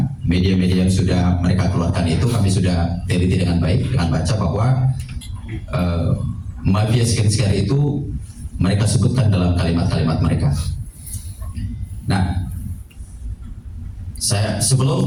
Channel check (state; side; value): identical; both; correlation 1.00